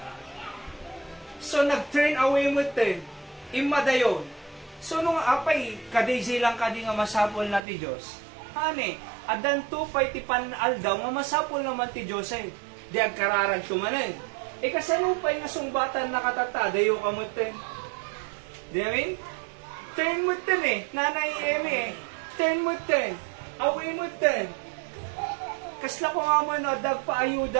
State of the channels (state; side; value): drops out; left; at 7.6 s